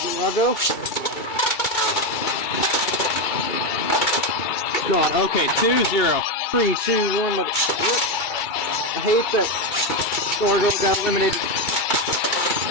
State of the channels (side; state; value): right; late; 2.3 ms